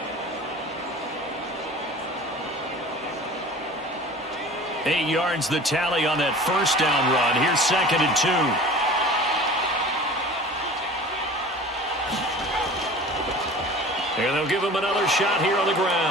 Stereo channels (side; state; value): both; normal; correlation 0.41